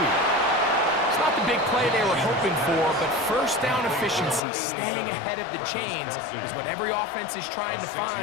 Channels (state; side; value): drops out; right; at 4.4 s